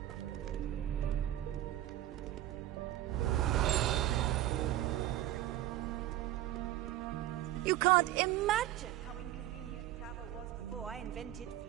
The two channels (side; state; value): left; quieter; 14.0 dB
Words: You can't imagine how inconvenient travel was before I invented